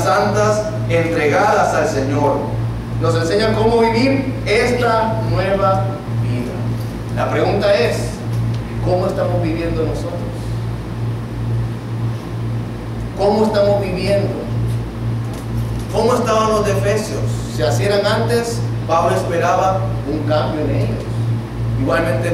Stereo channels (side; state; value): both; identical; correlation 1.00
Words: santas, entregadas al Señor. Nos enseña cómo vivir esta nueva vida. La pregunta es: ¿cómo estamos viviendo nosotros? ¿Cómo estamos viviendo? ¿Cómo estaban los de Efesios? Si así eran antes, Pablo esperaba un cambio en ellos. Igualmente